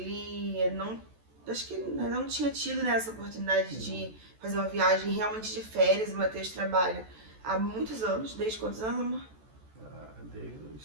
não... Acho que não tinha tido, né, essa oportunidade de fazer uma viagem realmente de férias. O Matheus trabalha há muitos anos. Desde quantos anos, amor? Desde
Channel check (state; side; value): late; left; 14 ms